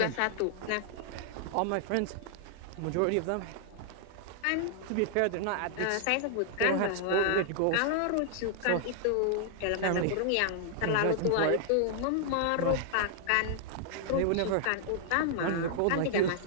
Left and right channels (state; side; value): different; both; correlation 0.00